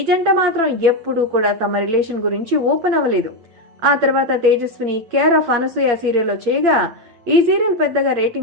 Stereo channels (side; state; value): left; late; 8.4 ms